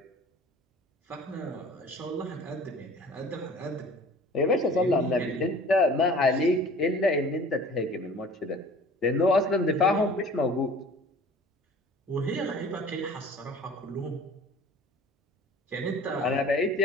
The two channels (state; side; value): normal; both; correlation 0.46